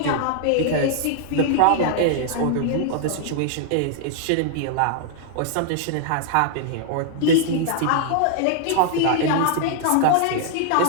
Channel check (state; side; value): different; both; correlation -0.01